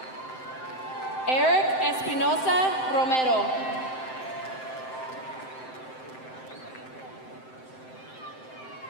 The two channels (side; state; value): right; late; 7.7 ms